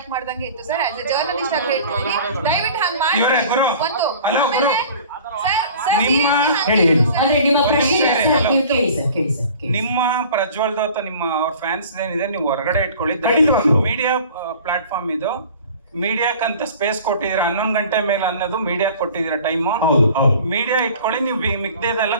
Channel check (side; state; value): both; inverted; correlation -0.45